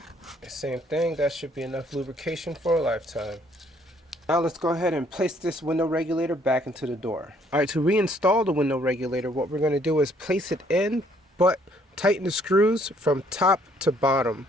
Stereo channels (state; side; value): normal; both; correlation 0.64